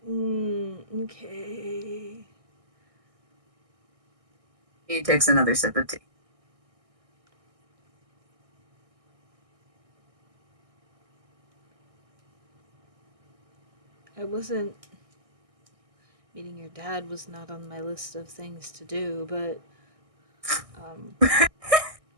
Okay. He takes another sip of tea. I wasn't. Meeting your dad was not on my list of things to do, but.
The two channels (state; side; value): late; left; 1.6 ms